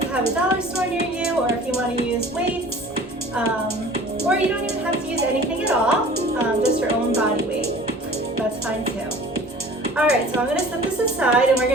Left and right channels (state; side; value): normal; both; correlation 0.45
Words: have a dollar store near you, or if you want to use weights, or you don't even have to use anything at all, just your own body weight, that's fine too. Alright, so I'm going to set this aside and we're